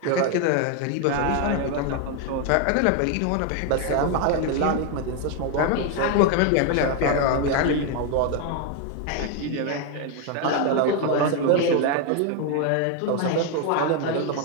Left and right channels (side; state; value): both; different; correlation 0.01